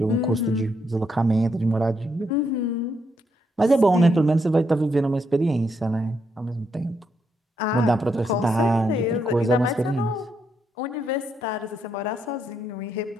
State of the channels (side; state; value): both; normal; correlation 0.78